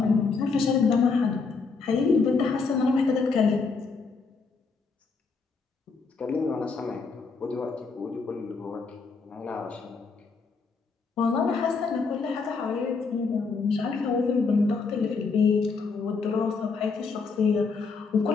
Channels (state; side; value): quieter; right; 4.7 dB